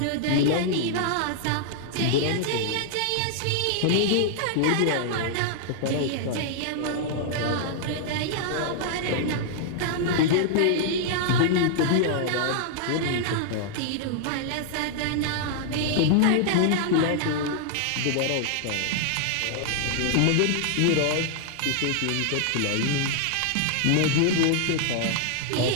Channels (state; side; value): different; both; correlation -0.01